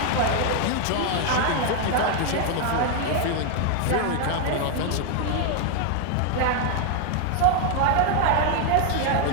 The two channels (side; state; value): both; different; correlation 0.00